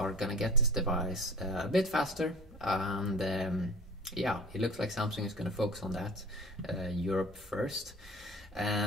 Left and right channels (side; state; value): both; normal; correlation 0.41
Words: gonna get this device a bit faster. And yeah, it looks like Samsung is gonna focus on that, Europe first.